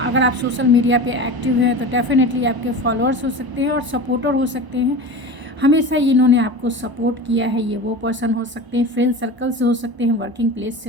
आप सोशल मीडिया पे एक्टिव हैं तो डेफिनेटली आपके फॉलोअर्स हो सकते हैं और सपोर्टर हो सकते हैं। हमेशा इन्होंने आपको सपोर्ट किया है, ये वो पर्सन हो सकते हैं, फ्रेंड सर्कल से हो सकते हैं, वर्किंग प्लेस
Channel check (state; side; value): late; left; 1.0 ms